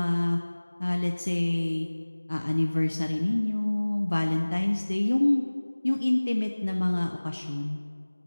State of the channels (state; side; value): inverted; both; correlation -1.00